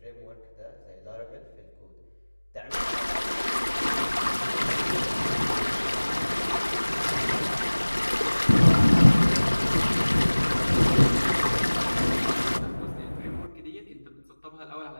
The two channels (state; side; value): inverted; both; correlation -1.00